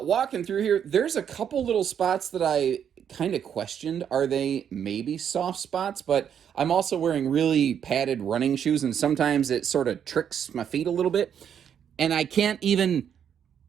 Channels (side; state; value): left; quieter; 8.5 dB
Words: through here, there's a couple little spots that I kind of questioned. Are they maybe soft spots? But I'm also wearing really padded running shoes, and sometimes it sort of tricks my feet a little bit. And I can't even,